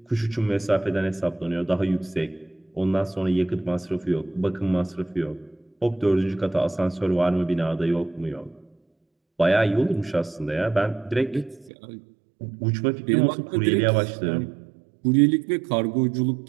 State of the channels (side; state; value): left; drops out; at 11.7 s